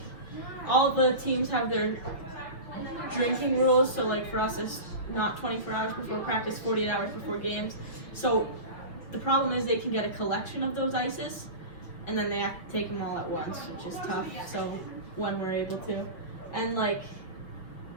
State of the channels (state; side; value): late; right; 6.1 ms